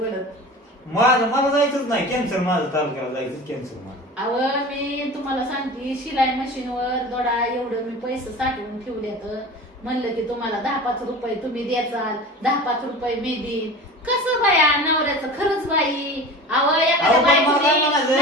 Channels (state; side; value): normal; both; correlation 0.35